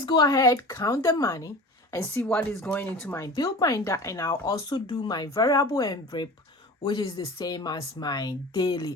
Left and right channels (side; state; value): both; normal; correlation 0.37